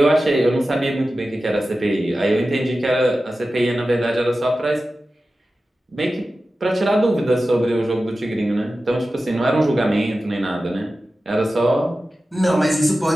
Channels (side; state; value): both; normal; correlation 0.94